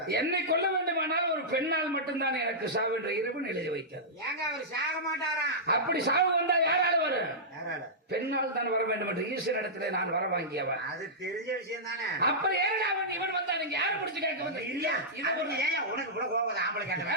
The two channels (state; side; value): normal; both; correlation -0.14